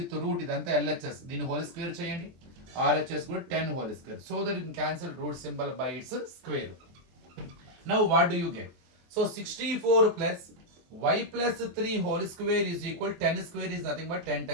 root, ఇదంతా LHS, దీన్ని హోల్ స్క్వేర్ చేయండి, RHS కూడా 10 whole square, so that you can cancel root symbol by its square. Now what do you get? So 64 plus y plus 3 whole square is equal, 10 square is nothing but 10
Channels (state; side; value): late; left; 23 ms